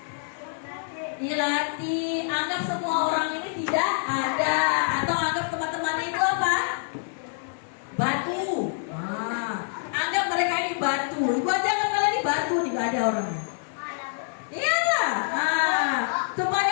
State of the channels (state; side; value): silent; right; digital silence